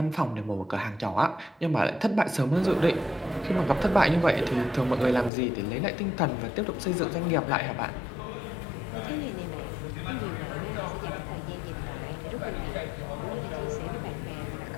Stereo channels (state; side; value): drops out; right; at 5.3 s